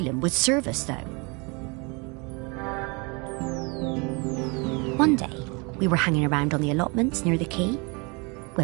would serve us, though. One day, we were hanging around on the allotments near the quay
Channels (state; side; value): quieter; left; 30.2 dB